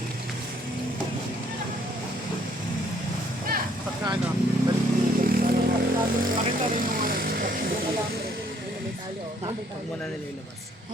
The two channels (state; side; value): normal; both; correlation 0.64